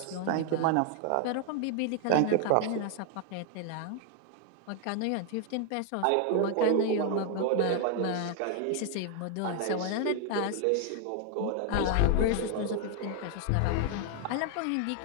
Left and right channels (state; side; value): different; both; correlation 0.00